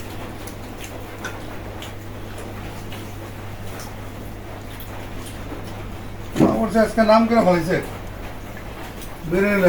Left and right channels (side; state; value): both; identical; correlation 1.00